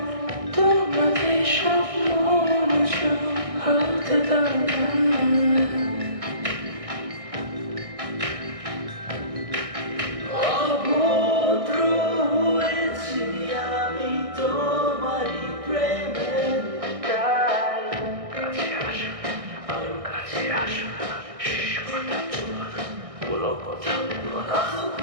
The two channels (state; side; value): late; left; 1.6 ms